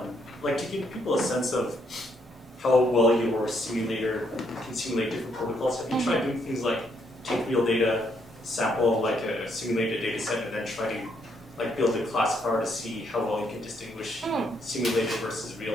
like, to give people a sense of how well your simulator can simulate different protocols? Have you tried doing things like take real data, sample like a simulated data set, and then try to like build a classifier to see how well you can distinguish simulated versus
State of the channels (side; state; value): both; normal; correlation 0.73